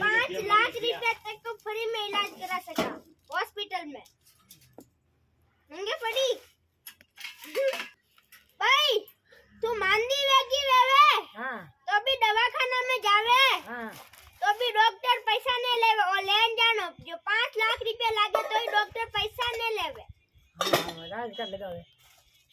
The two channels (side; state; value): both; identical; correlation 1.00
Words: लाख रुपया तक को फ्री में इलाज करा सका हॉस्पिटल में। मंगे पड़ी भाई तू मांदी वेगी वेवे हाँ तो भी दवाखाना में जावे हाँ तो भी डॉक्टर पैसा नहीं लेवे और लेन जानो जो 5 लाख रुपया लागे तो ही डॉक्टर पैसा नहीं लेवे। हाँ राज कर लगावे